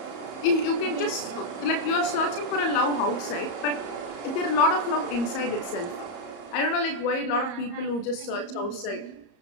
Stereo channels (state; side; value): late; right; 34 ms